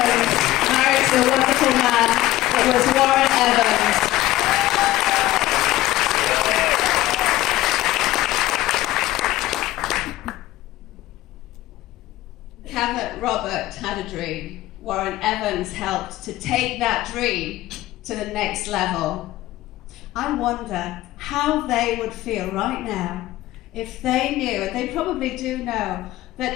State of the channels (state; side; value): quieter; right; 16.1 dB